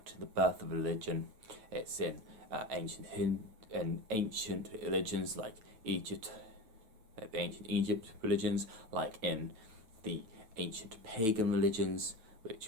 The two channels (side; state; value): left; late; 9.1 ms